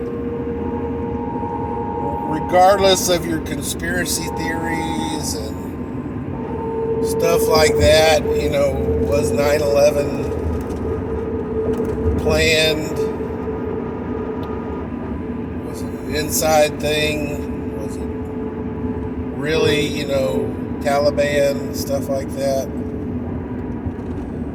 regardless of your conspiracy theories and stuff like that, was 9/11 planned? Was it an inside thing? Was it really, Taliban, stuff like that?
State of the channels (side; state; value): both; identical; correlation 1.00